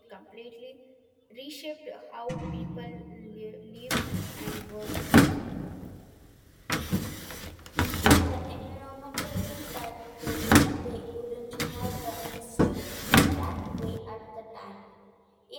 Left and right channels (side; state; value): both; identical; correlation 1.00